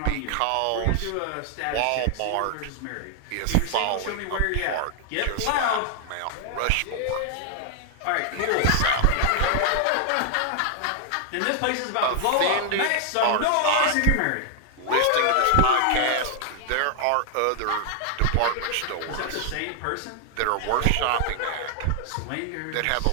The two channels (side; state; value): both; different; correlation 0.00